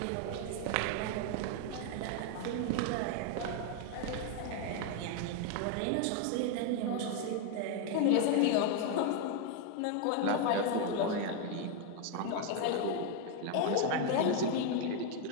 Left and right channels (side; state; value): both; different; correlation 0.01